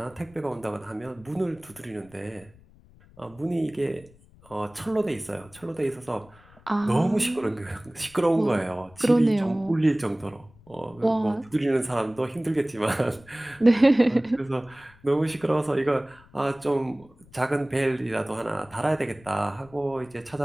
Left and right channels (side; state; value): left; noise; rumble, 26 dB below the sound